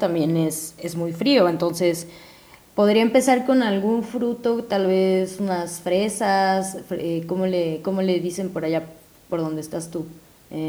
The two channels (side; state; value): both; identical; correlation 1.00